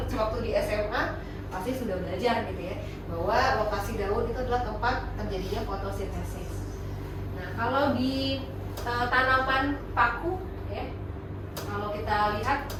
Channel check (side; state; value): both; identical; correlation 1.00